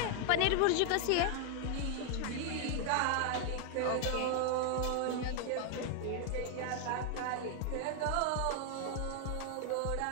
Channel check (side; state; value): both; different; correlation 0.00